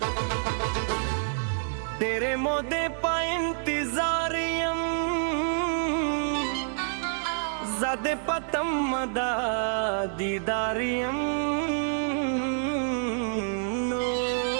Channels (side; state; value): left; silent; 60 dB below the other